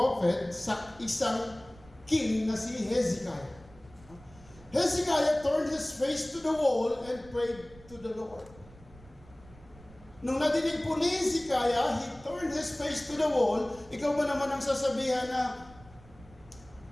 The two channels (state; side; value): noise; right; rumble, 22 dB below the sound